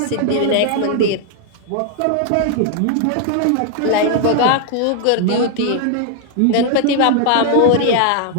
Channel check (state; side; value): different; both; correlation 0.00